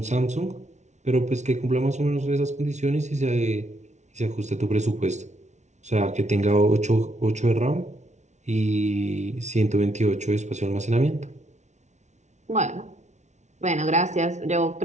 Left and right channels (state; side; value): late; left; 0.33 ms